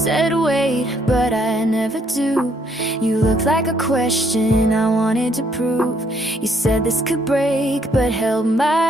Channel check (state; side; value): normal; both; correlation 0.69